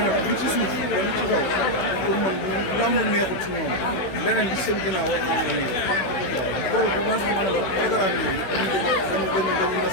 nag li ci suuf li ci kaw pour man lamb neexul ci ñoom leneen li seen ginnaaw war naa mën a neex problème bu ma sax mën a la programme yi dañu na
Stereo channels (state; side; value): late; right; 16 ms